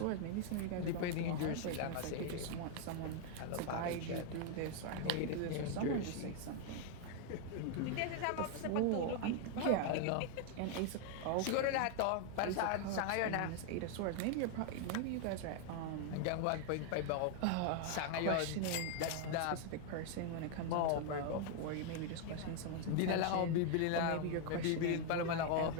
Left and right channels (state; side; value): different; both; correlation 0.00